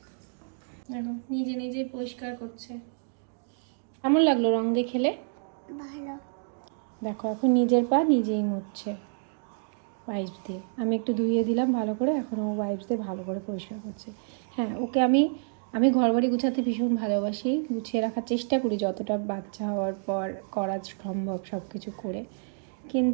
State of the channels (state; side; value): silent; left; digital silence